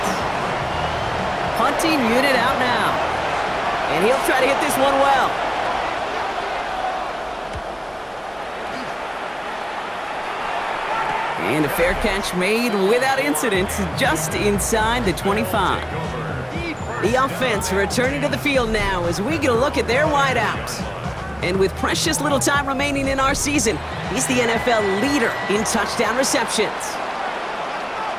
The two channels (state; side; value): identical; both; correlation 1.00